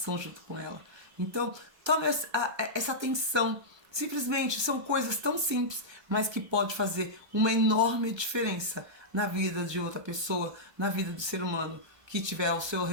junto com ela? Então, tome essa atenção. Simplesmente são coisas tão simples, mas que pode fazer uma enorme diferença na vida de outra pessoa, na vida do ser humano que estiver ao seu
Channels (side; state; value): left; late; 1.3 ms